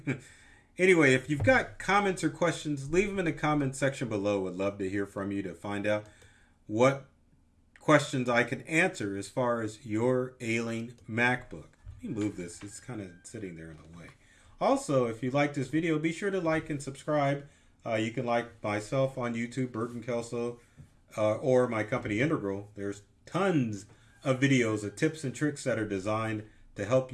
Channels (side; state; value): both; identical; correlation 1.00